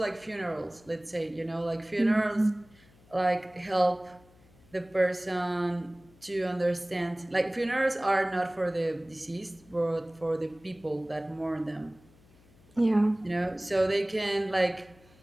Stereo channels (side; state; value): left; noise; hum, 28 dB below the sound